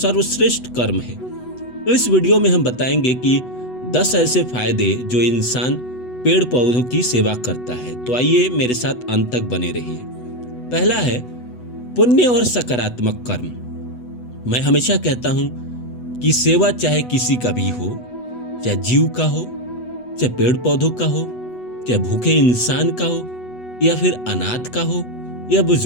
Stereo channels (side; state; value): right; late; 8.1 ms